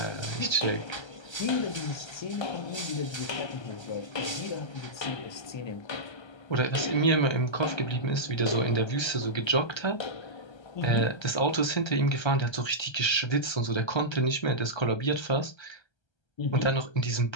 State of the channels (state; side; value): late; right; 1.3 ms